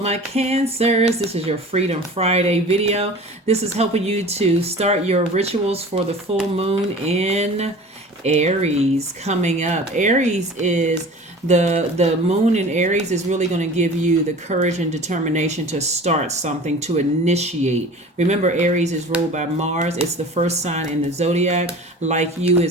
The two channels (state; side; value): normal; both; correlation 0.40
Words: my Cancers. This is your Freedom Friday video. This is helping you to start your rituals for the full moon in Aries coming up. Aries is the moon in Aries is really going to give you the courage and determination to start something, to initiate. Remember, Aries is ruled by Mars. It's the first sign in the Zodiac. Like you